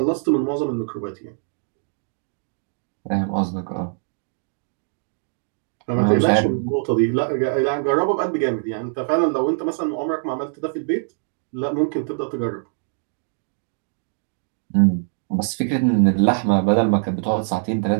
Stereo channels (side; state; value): left; silent; 63 dB below the other